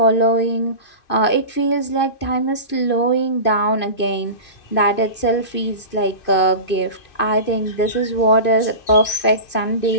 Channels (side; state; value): right; late; 2.5 ms